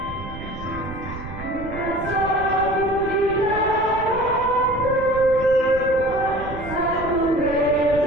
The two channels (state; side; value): noise; right; rumble, 12 dB below the sound